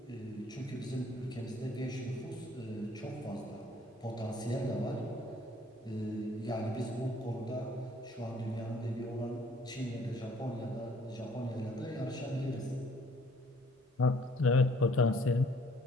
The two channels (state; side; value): normal; both; correlation 0.59